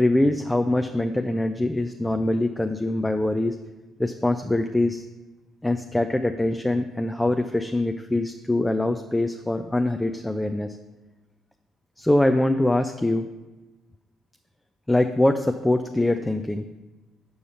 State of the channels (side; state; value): both; normal; correlation 0.96